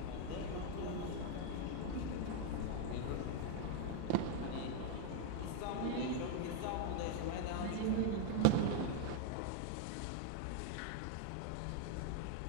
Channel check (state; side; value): different; both; correlation 0.00